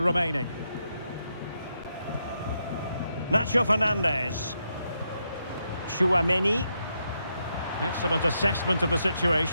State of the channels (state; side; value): inverted; both; correlation -0.82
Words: Nacho Fernandez. Chouameni. Excellent assessment of the